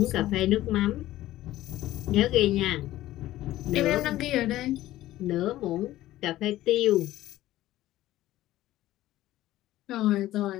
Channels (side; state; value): right; quieter; 15.1 dB